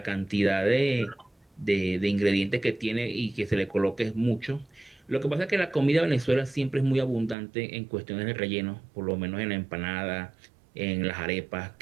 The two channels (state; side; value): drops out; left; at 7.4 s